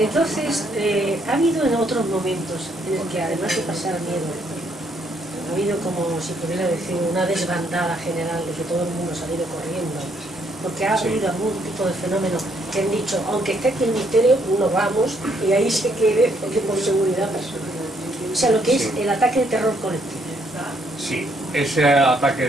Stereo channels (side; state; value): both; normal; correlation 0.71